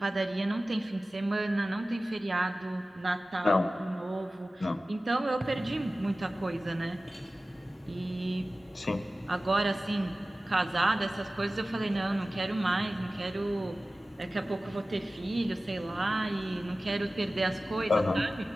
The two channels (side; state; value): both; normal; correlation 0.96